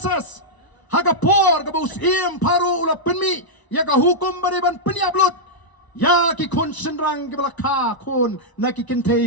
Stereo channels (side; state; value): right; late; 1.0 ms